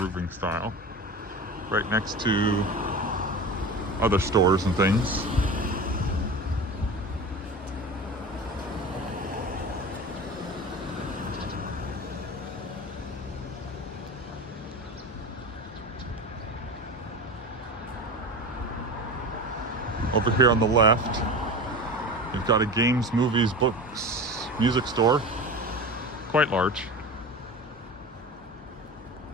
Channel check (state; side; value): normal; both; correlation 0.30